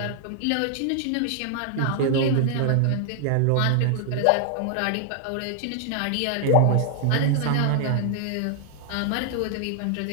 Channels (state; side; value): different; both; correlation 0.00